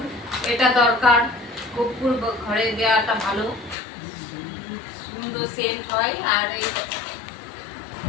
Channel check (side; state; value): right; drops out; at 3.8 s